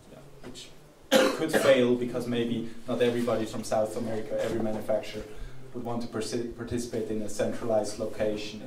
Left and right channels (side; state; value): both; identical; correlation 1.00